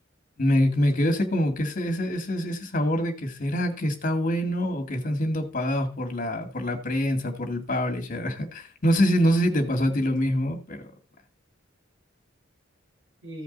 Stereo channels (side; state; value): both; normal; correlation 0.80